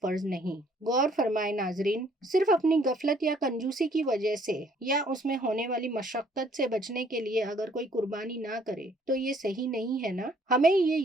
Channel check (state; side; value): normal; both; correlation 0.62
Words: فرض نہیں۔ غور فرمائے ناظرین، صرف اپنی غفلت یا کنجوسی کی وجہ سے یا اس میں ہونے والی مشقت سے بچنے کے لیے اگر کوئی قربانی نہ کرے تو یہ صحیح نہیں ہے نا۔ ہمیں یہ